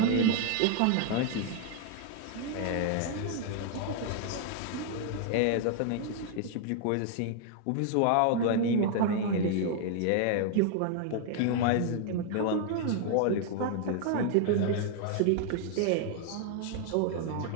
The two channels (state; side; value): different; both; correlation 0.00